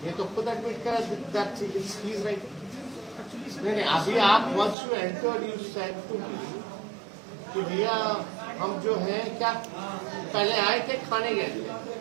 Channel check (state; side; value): drops out; left; at 4.8 s